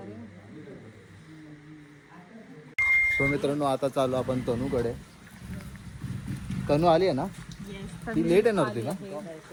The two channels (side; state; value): both; identical; correlation 1.00